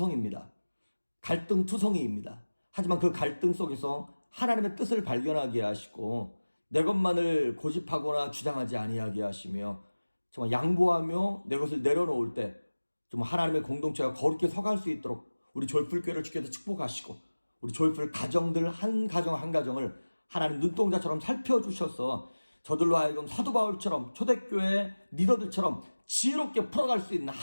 갈등투성이입니다. 하지만 그 갈등 속에서 하나님의 뜻을 발견하게 하시고 내 것만을 고집하거나 주장하지 아니하게 하시며 정말 양보하며 내 것을 내려놓을 때 좀 하나님의 공동체가 거룩히 서갈 수 있도록 우리 조이풀교회를 주께서 축복하시고 우리 조이풀 가정들 한 가정 한 가정을 하나님 눈동자처럼 살펴주셔서 저들로 하여금 사도 바울처럼 초대교회 리더들처럼 지혜롭게 풀어갈 수 있는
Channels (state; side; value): inverted; both; correlation -1.00